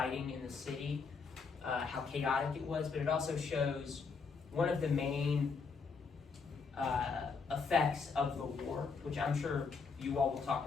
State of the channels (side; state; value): right; quieter; 5.0 dB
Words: in the city, how chaotic it was, but it also shows one of the main effects of the war, which I'm sure you all will talk